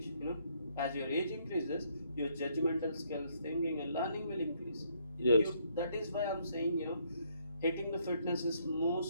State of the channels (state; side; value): inverted; both; correlation -0.70